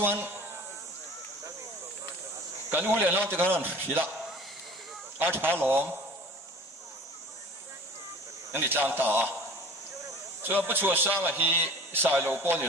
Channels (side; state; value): both; normal; correlation 0.43